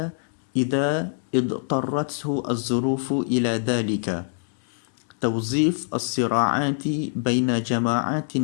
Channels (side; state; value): right; silent; digital silence